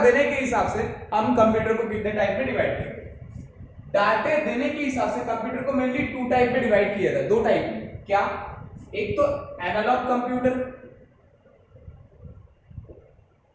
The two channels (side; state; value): both; identical; correlation 1.00